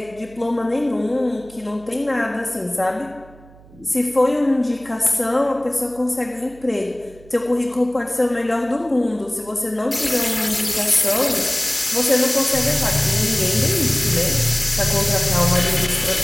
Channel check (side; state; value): right; noise; hum, 24 dB below the sound